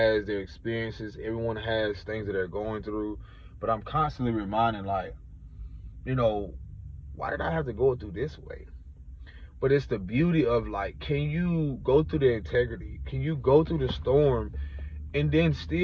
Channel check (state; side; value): identical; both; correlation 1.00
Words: their experiences, everyone has things that they're going through. But I'm constantly reminding, like, you know, why did I have to go through this way? But it's the beauty of, like, can you go through the integrity? Can you go through the storm and then